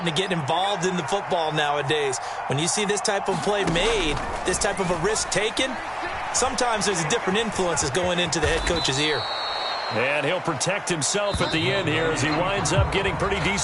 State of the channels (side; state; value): both; identical; correlation 1.00